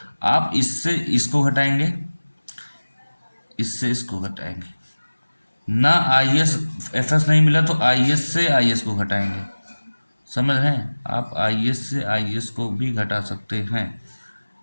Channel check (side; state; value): both; inverted; correlation -1.00